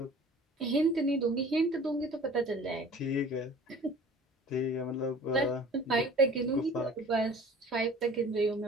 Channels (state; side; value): normal; both; correlation 0.46